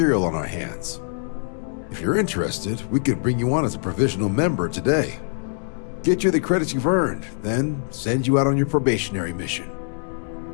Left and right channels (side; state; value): right; silent; digital silence